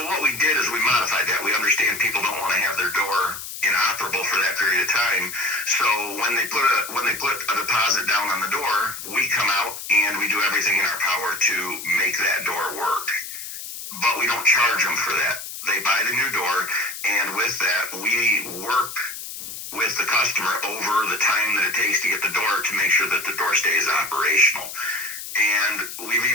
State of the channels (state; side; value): noise; left; hiss, 9 dB below the sound